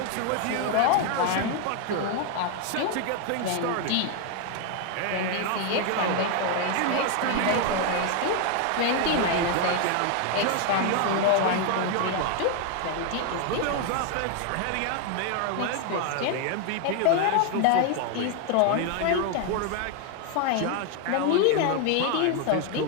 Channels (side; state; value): both; different; correlation 0.01